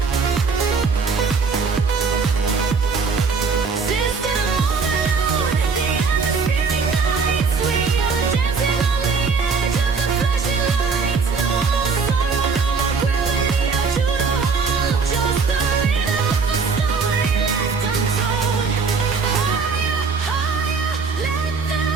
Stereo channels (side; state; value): left; quieter; 5.0 dB